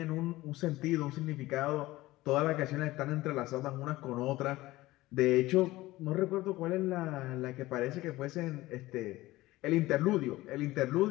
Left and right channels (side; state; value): right; quieter; 18.1 dB